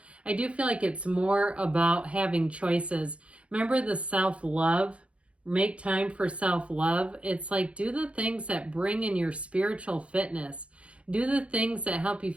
I do feel like it's more about having choices. Remember the self-love? Make time for self-love. It's like do the things that bring in your spiritual fitness. Do the things that help you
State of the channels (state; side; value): late; left; 0.061 ms